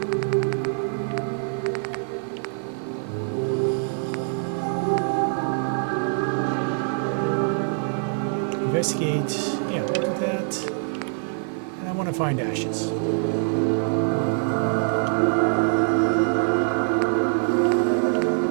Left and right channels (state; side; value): silent; left; 62 dB below the other